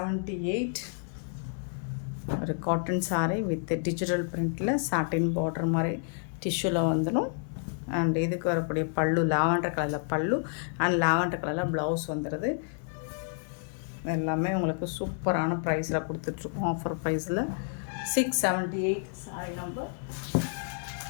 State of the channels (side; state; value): right; silent; 58 dB below the other